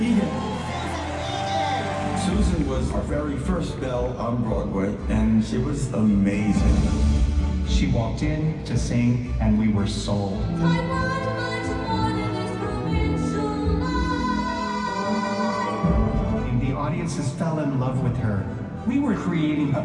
Egan. Susan was our very first Belle on Broadway, and she was amazing. She walked in to sing, and we were sold. The audiences fell in love with her. We were creating a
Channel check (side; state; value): both; identical; correlation 1.00